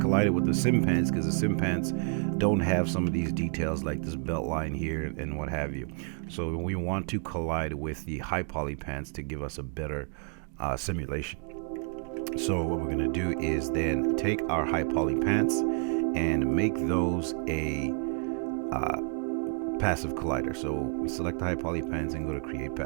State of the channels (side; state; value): left; quieter; 38.0 dB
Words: it with the sim pants, because the sim pants don't have some of these details like this belt line here and what have you. So we want to collide with the high poly pants to give us a better simulation. So what we're going to do is then take our high poly pants and make those a passive collider. So select the high poly pants and go to create